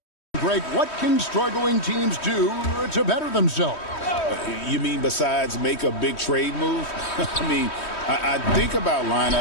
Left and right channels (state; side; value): late; right; 3.1 ms